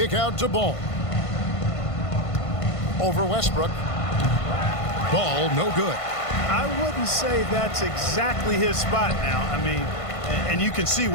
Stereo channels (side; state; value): right; late; 1.5 ms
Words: out to Ball. Over Westbrook. Ball no good. I wouldn't say that's exactly his spot now. I mean, and you can see